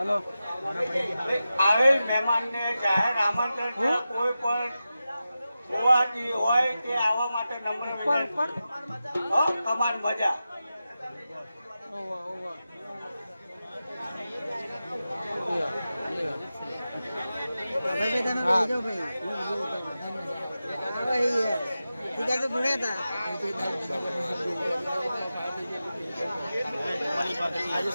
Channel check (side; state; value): both; inverted; correlation -0.93